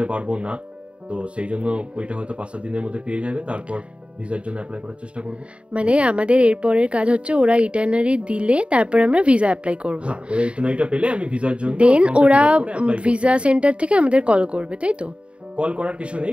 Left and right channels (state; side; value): late; left; 0.059 ms